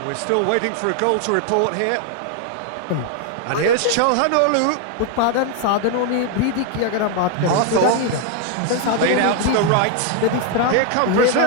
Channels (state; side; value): different; both; correlation 0.00